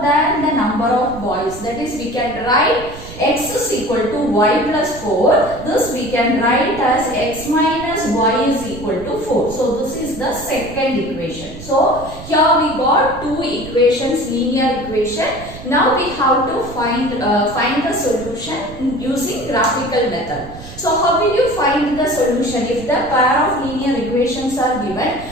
than the number of boys, that is we can write x is equal to y plus 4, this we can write as x minus y is equal to 4. So this is the second equation. So here we got two equations, linear equation. Now we have to find the solution using graphical method. So how will you find the solution? If the pair of linear equations are given,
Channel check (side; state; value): right; noise; rumble, 14 dB below the sound